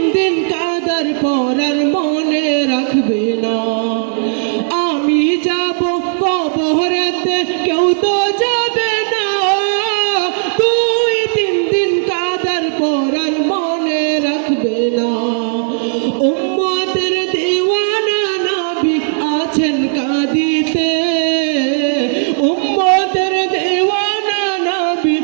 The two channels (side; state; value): left; silent; digital silence